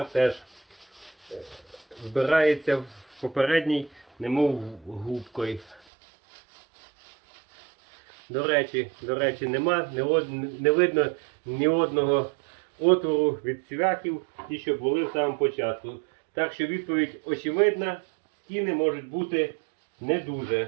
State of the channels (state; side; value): drops out; left; at 5.8 s